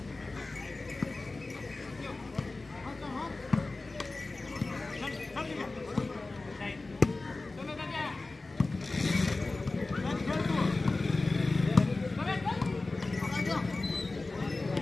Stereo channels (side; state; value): right; quieter; 3.3 dB